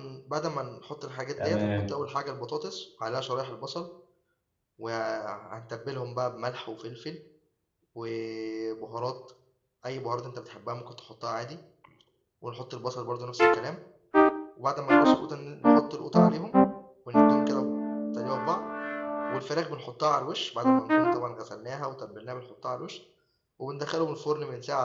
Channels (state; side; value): identical; both; correlation 1.00